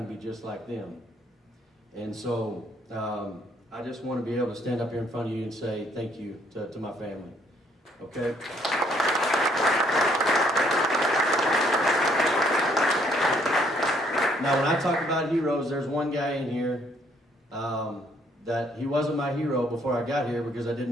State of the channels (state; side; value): normal; both; correlation 0.67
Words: to be just like them. And so I just want to be able to stand up here in front of you and say thank you to my family. Okay? Now, when I talk about heroes, there's one guy in here that he wasn't my hero before I got here because I